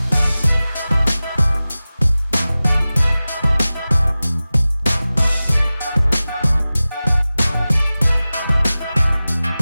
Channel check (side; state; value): both; inverted; correlation -0.97